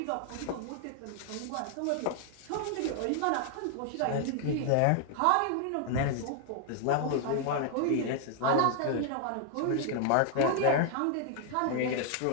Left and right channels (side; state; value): both; different; correlation 0.00